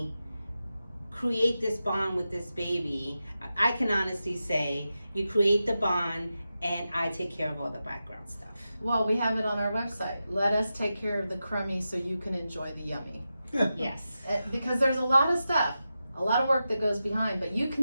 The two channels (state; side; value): inverted; both; correlation -0.91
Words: create this bond with this baby. I can honestly say you create the bond and I take care of all the background stuff. Well, we have it on our website. Let us take care of the crummy so you can enjoy the yummy. Yes. Because there's a lot of stuff, a lot of work that goes behind, but you